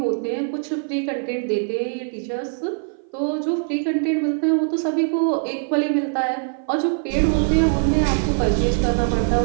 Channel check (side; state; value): left; silent; 57 dB below the other